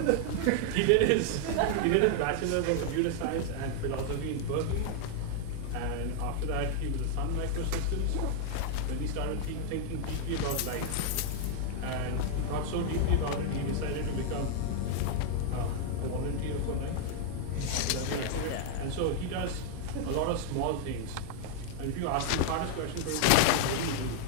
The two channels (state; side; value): different; both; correlation 0.00